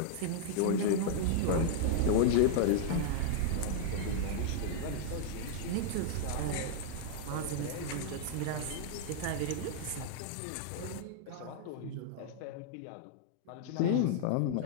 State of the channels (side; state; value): both; different; correlation -0.01